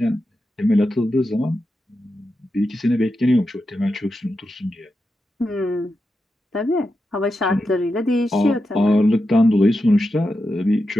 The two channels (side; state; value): both; normal; correlation 0.88